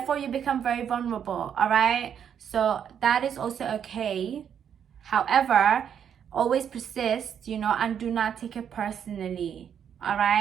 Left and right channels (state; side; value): quieter; left; 8.4 dB